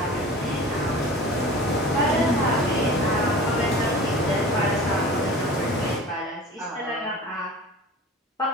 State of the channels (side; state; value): both; normal; correlation 0.39